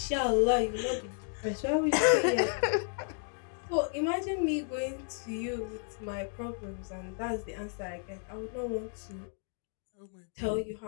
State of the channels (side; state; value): right; silent; 56 dB below the other